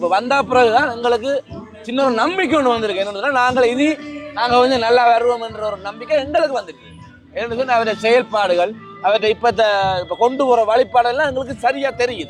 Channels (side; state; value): both; identical; correlation 1.00